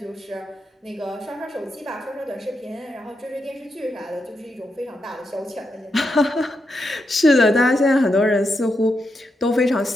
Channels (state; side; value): normal; both; correlation 0.84